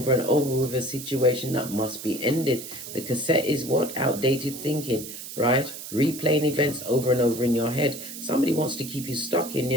and over with a situation that must be ended. The cassette is what? Outdated thinking, right? Replaying events over and over in your head. Somebody wants to keep you stuck in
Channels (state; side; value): noise; right; hiss, 10 dB below the sound